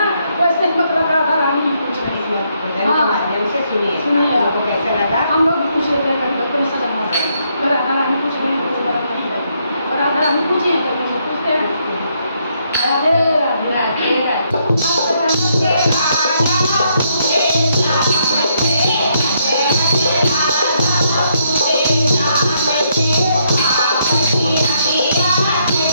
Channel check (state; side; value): inverted; both; correlation -0.74